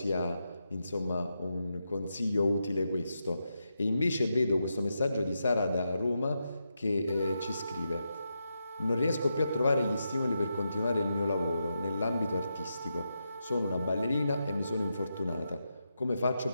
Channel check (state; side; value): inverted; both; correlation -0.86